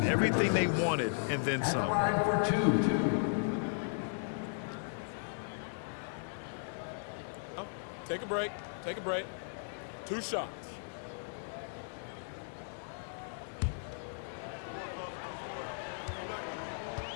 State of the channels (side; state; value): right; silent; digital silence